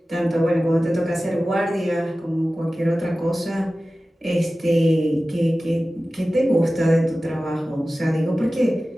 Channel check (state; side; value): normal; both; correlation 0.96